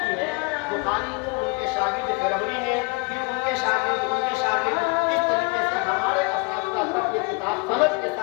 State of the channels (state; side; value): quieter; right; 29.9 dB